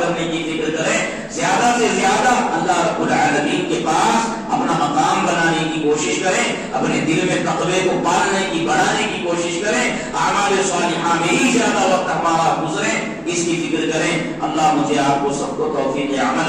کی فکر کریں، زیادہ سے زیادہ اللہ رب العالمین کے پاس اپنا مقام بنانے کی کوشش کریں، اپنے دل میں تقوی کو پالنے کی، بڑھانے کی کوشش کریں، اعمال صالحہ میں ہی زیادہ وقت ہمارا گزرے، اس کی فکر کریں۔ اللہ مجھے آپ کو سب کو توفیق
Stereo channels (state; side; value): identical; both; correlation 1.00